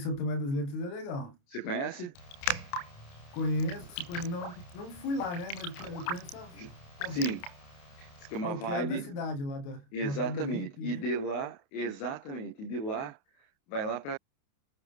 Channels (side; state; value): right; late; 28 ms